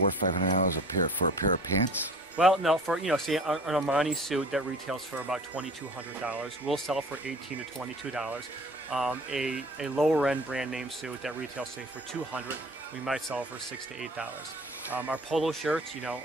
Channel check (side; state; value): both; normal; correlation 0.45